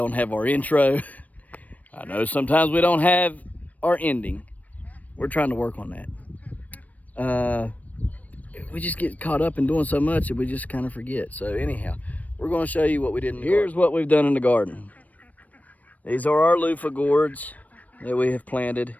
have our intro. I know sometimes we don't have our ending. We're trying to work on that. We just get caught up in doing so much that we just kind of forget. So anyhow, we're going to show you what we did in the garden. Here's what we've done in the garden. These are our loofah gourds that we have planted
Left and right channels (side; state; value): right; late; 0.072 ms